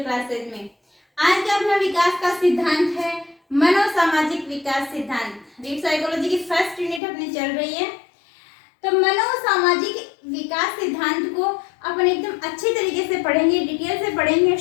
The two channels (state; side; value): drops out; right; at 7.0 s